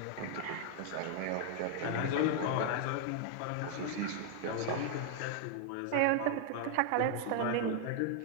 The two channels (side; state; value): both; different; correlation 0.00